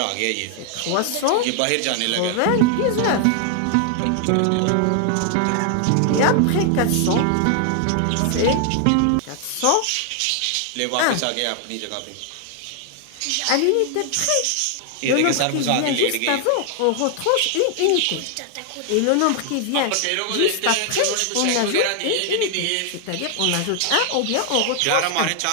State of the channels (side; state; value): both; different; correlation 0.00